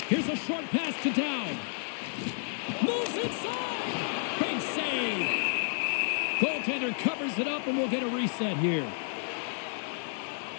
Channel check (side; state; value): right; silent; 57 dB below the other